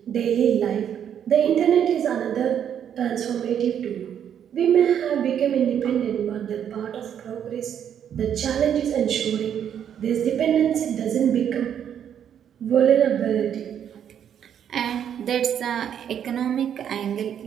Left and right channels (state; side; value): quieter; left; 9.1 dB